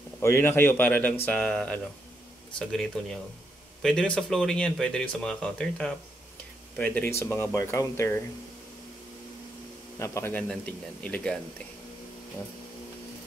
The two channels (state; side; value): normal; both; correlation 0.79